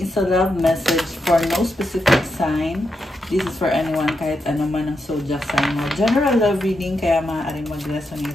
is a love message for no specific sign. This is for anyone, kahit ano man ang zodiac sign mo. General love reading, kaya maaaring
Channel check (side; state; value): both; normal; correlation 0.85